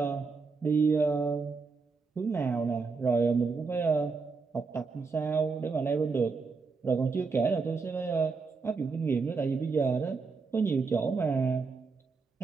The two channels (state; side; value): quieter; left; 4.6 dB